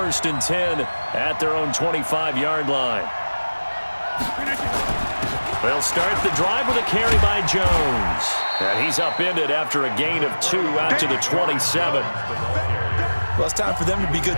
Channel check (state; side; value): inverted; both; correlation -1.00